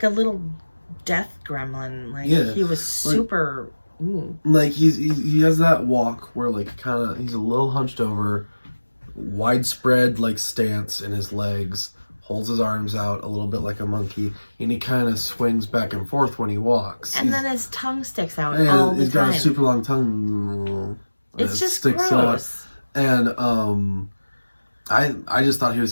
a little death gremlin. Like he was super. Like he has that walk where like kind of he's a little hunched over, widespread like stance in his legs, holds his arms out a little bit like a monkey, and he kind of swings back and forth when he walks. And then his tongue sticks out all the time. He's got a super long tongue. It's just sticks gross. Out. And I just thought he was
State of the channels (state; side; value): inverted; both; correlation -1.00